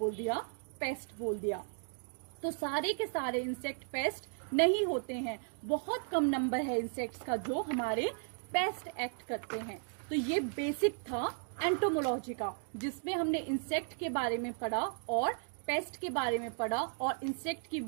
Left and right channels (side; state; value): left; silent; 54 dB below the other